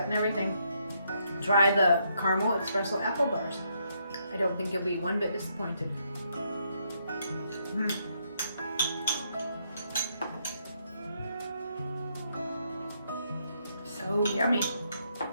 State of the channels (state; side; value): inverted; both; correlation -0.75